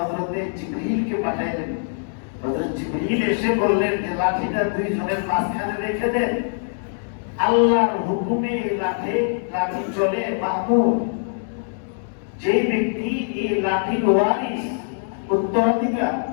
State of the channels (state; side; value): silent; right; 64 dB below the other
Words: জিবরীলকে পাঠাইলেন। হযরত জিবরীল এসে বললেন যে লাঠিটা 2 জনের মাঝখানে রেখে দেন। আল্লাহর হুকুমে লাঠি চলে মামুর। যে ব্যক্তি এই লাঠির ওয়ারিস